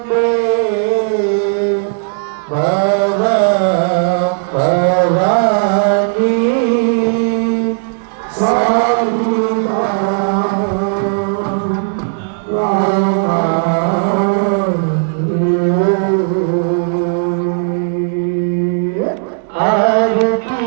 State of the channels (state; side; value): silent; left; digital silence